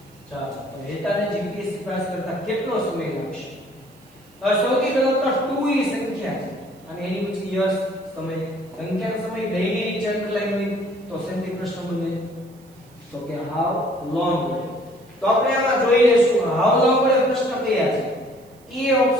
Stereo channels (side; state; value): right; noise; hiss, 29 dB below the sound